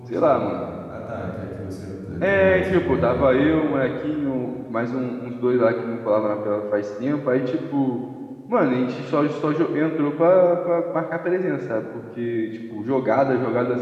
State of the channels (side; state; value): both; identical; correlation 1.00